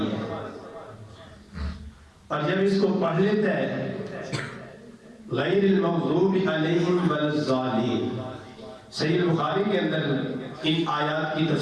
ہے۔ اور جب اس کو پڑھ لیتا ہے غیر المغضوب علیہم ولا الضالین، صحیح بخاری کے اندر ان آیات کی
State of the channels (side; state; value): both; identical; correlation 1.00